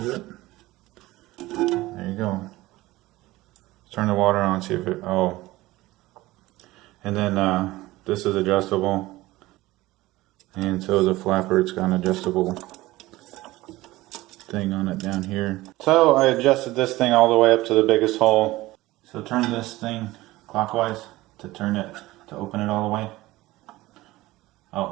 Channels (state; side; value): quieter; left; 18.3 dB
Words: it. There you go. Turn the water on, see if it, oh. And then this is adjustable. And so is a flapper, it's got an adjustable thing on it down here. So I adjusted this thing all the way up to the biggest hole. So turn this thing clockwise to turn it, to open it all the way.